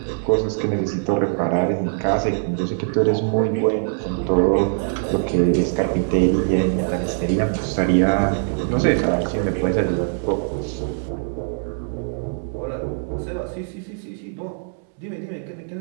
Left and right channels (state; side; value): silent; left; digital silence